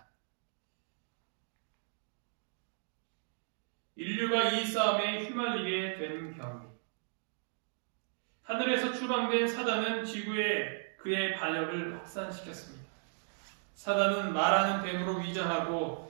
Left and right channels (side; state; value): left; silent; digital silence